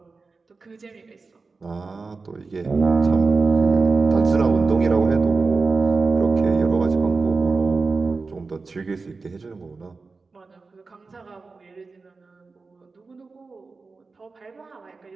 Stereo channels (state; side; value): quieter; left; 4.1 dB